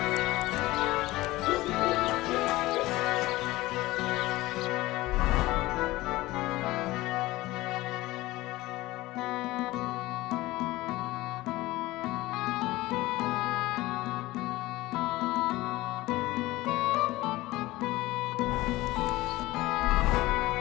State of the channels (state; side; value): quieter; right; 18.6 dB